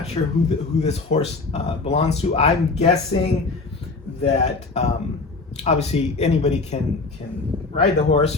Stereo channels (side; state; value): right; quieter; 3.8 dB